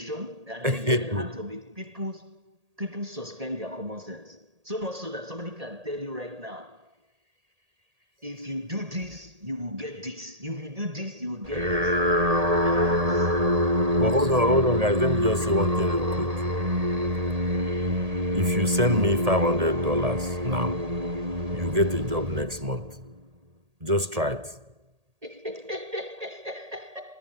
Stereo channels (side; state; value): left; late; 1.8 ms